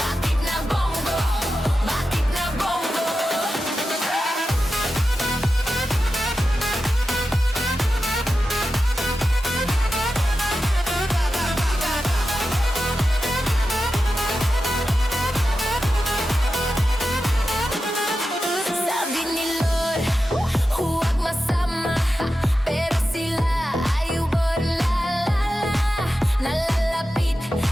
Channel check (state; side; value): normal; both; correlation 0.91